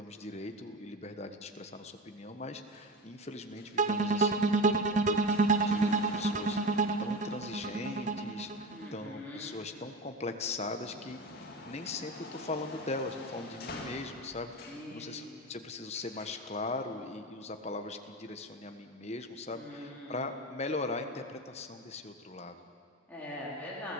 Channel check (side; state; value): both; normal; correlation 0.25